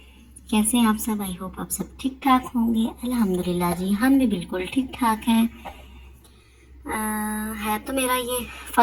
कैसे हैं आप सब? आई होप आप सब ठीक ठाक होंगे। अल्हम्दुलिल्लाह जी, हम भी बिल्कुल ठीक ठाक हैं। है तो मेरा ये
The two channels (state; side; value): identical; both; correlation 1.00